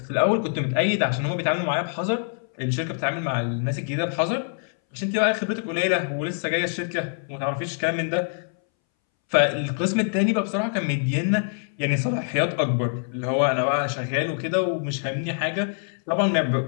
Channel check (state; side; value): silent; right; 61 dB below the other